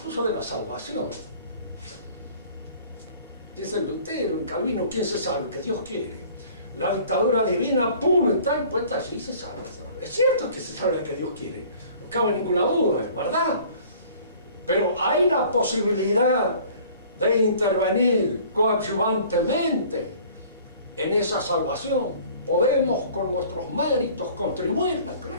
de la salvación. Dice Lutero, en Calvino, ¿quién se salva? Que Dios quiere. La dictadura divina, pum, está impuesta allí y se salva. Es cierto que se salva que Dios quiere, no cabe ninguna duda, es verdad. Pero hay la posibilidad de intervenir coadyuvantemente en esa salvación. Podemos con nuestros méritos contribuirla,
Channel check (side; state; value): both; inverted; correlation -0.50